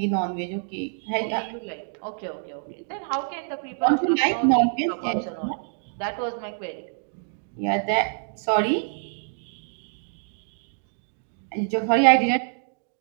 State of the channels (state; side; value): silent; left; digital silence